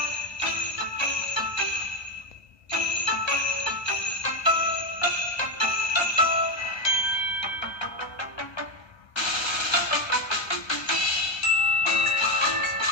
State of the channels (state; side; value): late; right; 1.3 ms